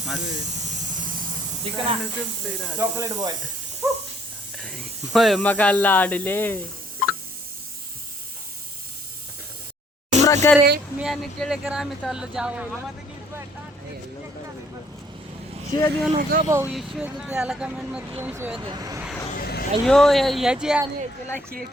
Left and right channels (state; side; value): normal; both; correlation 0.64